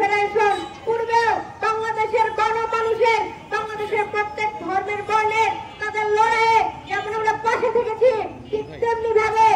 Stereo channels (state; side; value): identical; both; correlation 1.00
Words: পূর্বেও বাংলাদেশের গণমানুষের, বাংলাদেশের প্রত্যেক ধর্মের বর্ণের তাদের লড়াইয়ে যেমন আমরা পাশে থেকেছি, ঠিক তেমনি ভাবে